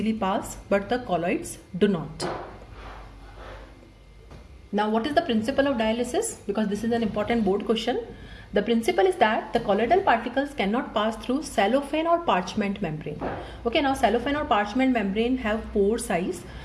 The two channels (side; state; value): both; identical; correlation 1.00